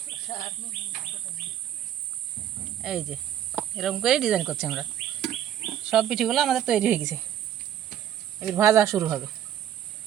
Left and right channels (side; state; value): left; quieter; 10.6 dB